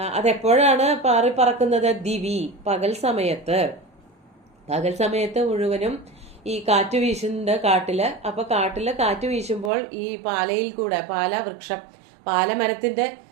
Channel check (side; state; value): left; drops out; at 9.7 s